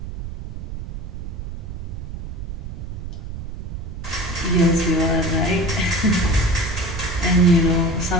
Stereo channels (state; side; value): noise; right; rumble, 8 dB below the sound